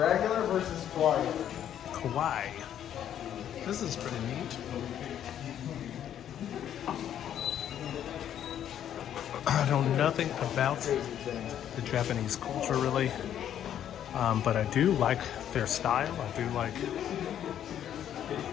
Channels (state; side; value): quieter; right; 10.2 dB